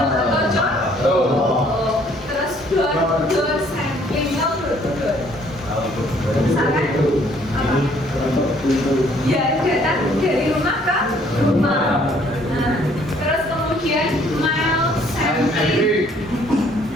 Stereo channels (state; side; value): normal; both; correlation 0.62